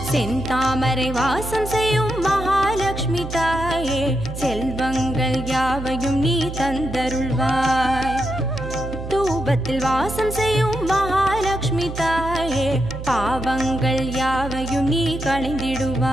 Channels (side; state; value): right; noise; hum, 8 dB below the sound